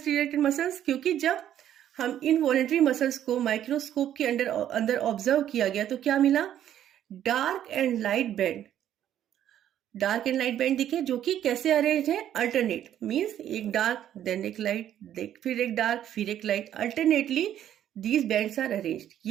मसल्स? क्योंकि जब हम इन वॉलेंट्री मसल्स को माइक्रोस्कोप के अंदर ऑब्जर्व किया गया तो क्या मिला, dark and light band. Dark and light band दिखे, जो कि कैसे अरेंज है, अल्टरनेट, मीन्स एक डार्क देन एक लाइट, फिर एक डार्क फिर एक light, alternately these bands are arranged.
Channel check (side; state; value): left; quieter; 10.9 dB